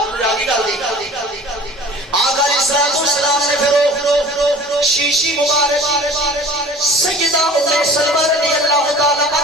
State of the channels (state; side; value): normal; both; correlation 0.43